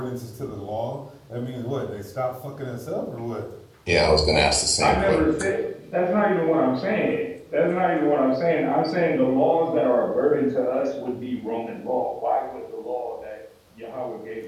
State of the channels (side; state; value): both; identical; correlation 1.00